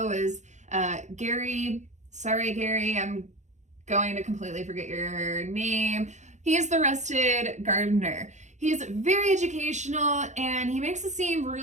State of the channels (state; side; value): late; left; 0.34 ms